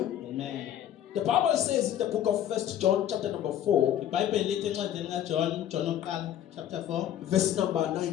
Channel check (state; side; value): quieter; right; 11.0 dB